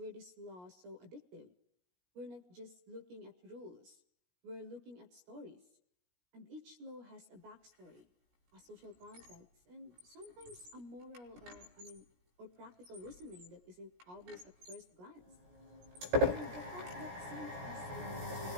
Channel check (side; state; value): left; late; 17 ms